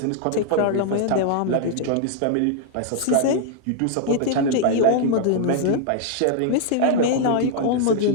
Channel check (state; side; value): different; both; correlation 0.00